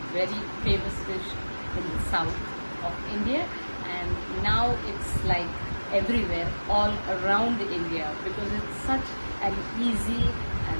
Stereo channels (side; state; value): both; inverted; correlation -1.00